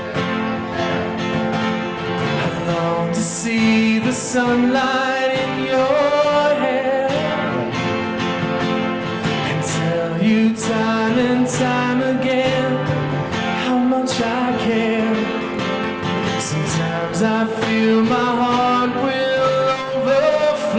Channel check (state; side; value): identical; both; correlation 1.00